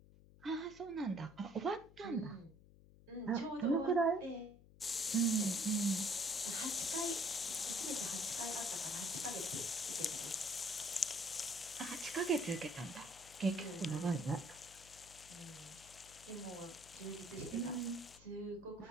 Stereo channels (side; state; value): left; noise; hum, 22 dB below the sound